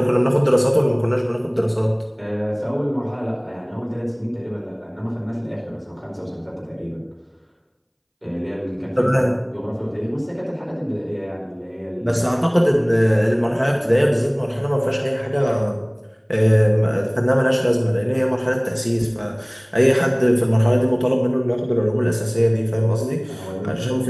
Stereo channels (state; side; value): identical; both; correlation 1.00